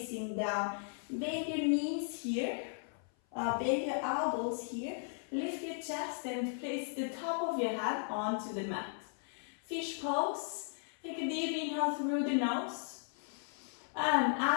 down. Bend your knees here, bend your elbows here, lift your chest and place the top of your head onto the mat. Fish pose, take a deep inhale through the nose. And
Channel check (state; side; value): silent; right; 54 dB below the other